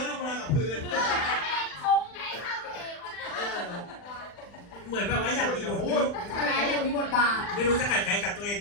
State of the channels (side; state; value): right; late; 40 ms